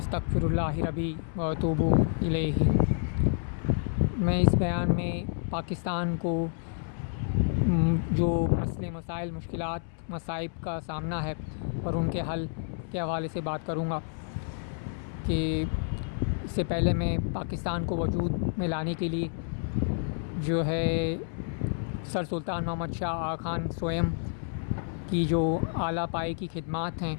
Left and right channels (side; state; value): right; silent; 58 dB below the other